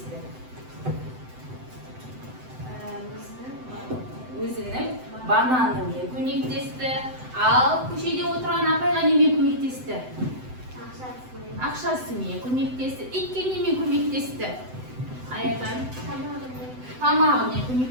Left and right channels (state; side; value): late; left; 7.9 ms